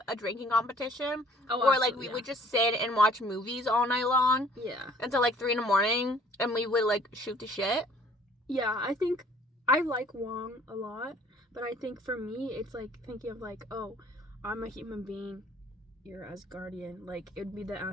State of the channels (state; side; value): normal; both; correlation 0.55